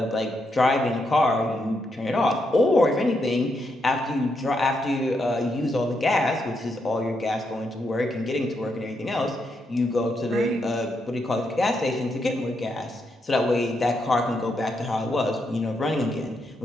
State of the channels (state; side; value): normal; both; correlation 0.81